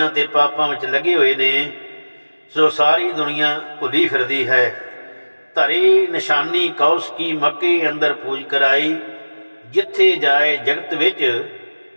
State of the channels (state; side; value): inverted; both; correlation -1.00